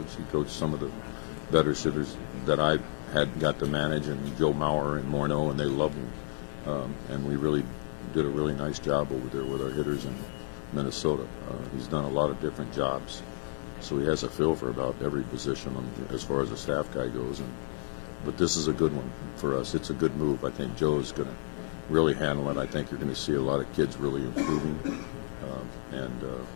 He coached some of the better hitters that I had got to manage, and Joe Mauer and Morneau, and they loved him. And we really did a really nice job over there with our hitters in Minnesota. He's done a lot of different jobs, so he has a feel for about every position as far as a staff guy goes. But this is a good one for us. It's a good move. I think Joe is going to really handle it. I think you're going to see a lot of kids really improving, and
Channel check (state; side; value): silent; right; digital silence